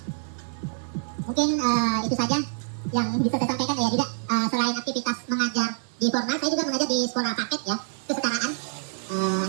Mungkin itu saja yang bisa saya sampaikan ya. Juga selain aktivitas mengajar di formal, saya juga mengajar di sekolah paket ya, kesetaraan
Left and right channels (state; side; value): silent; left; digital silence